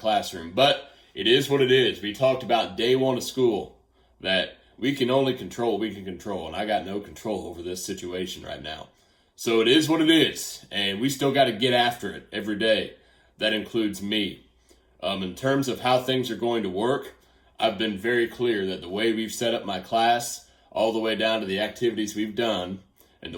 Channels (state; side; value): identical; both; correlation 1.00